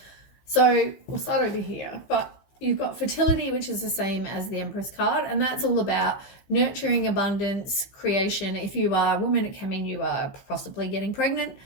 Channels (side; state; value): right; late; 15 ms